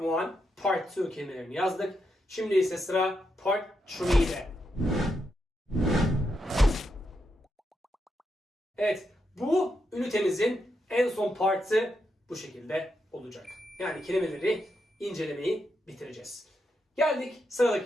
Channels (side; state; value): both; normal; correlation 0.83